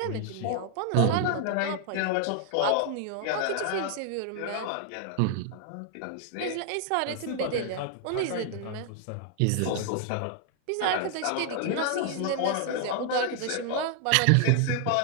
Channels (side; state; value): both; different; correlation 0.00